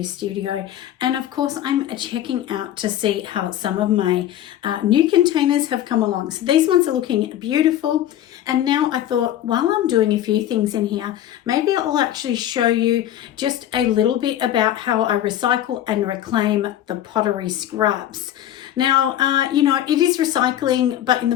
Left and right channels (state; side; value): quieter; right; 11.9 dB